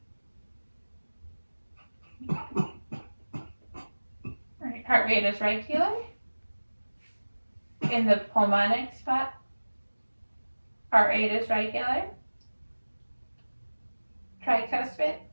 All right, heart rate is regular. In the pulmonic spot, heart rate is regular. Tricuspid,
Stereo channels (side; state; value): both; inverted; correlation -1.00